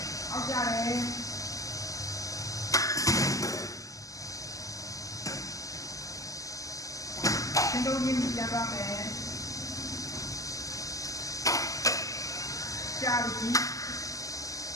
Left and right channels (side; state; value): right; late; 0.16 ms